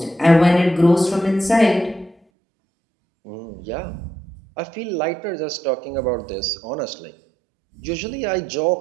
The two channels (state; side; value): drops out; left; at 2.1 s